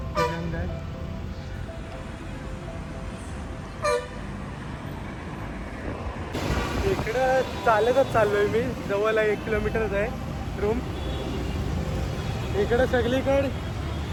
तिरंगा आहे. इकडं चालतच चाललोय मी, जवळ 1 किलोमीटरच आहे रूम. इकडं सगळीकडे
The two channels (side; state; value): both; identical; correlation 1.00